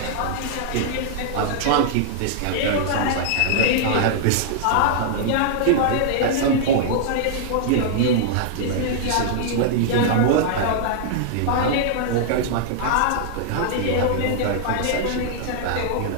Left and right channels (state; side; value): different; both; correlation -0.01